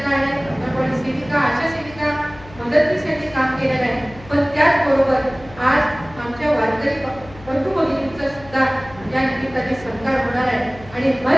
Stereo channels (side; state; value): left; noise; hum, 20 dB below the sound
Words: आहे, आपण सेविका, आशा सेविका, मदतनीस काम केलेलं आहे. पण त्याचबरोबर आज आमच्या वारकरी बंधू भगिनींचा सुद्धा या निमित्ताने सत्कार होणार आहे आणि